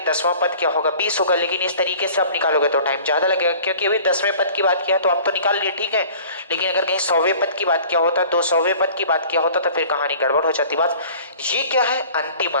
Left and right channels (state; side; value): inverted; both; correlation -0.47